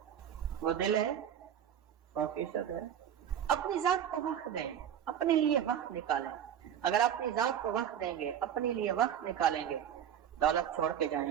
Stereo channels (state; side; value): quieter; left; 9.5 dB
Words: وہ دل ہے، 100% ہے۔ اپنی ذات کو وقت دیں، اپنے لیے وقت نکالیں۔ اگر اپنی ذات کو وقت دیں گے، اپنے لیے وقت نکالیں گے، دولت چھوڑ کے جائیں